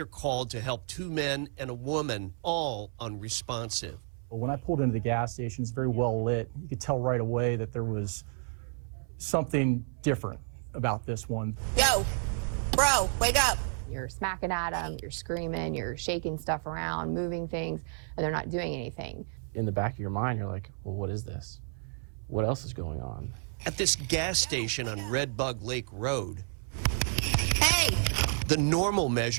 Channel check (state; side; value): silent; left; 57 dB below the other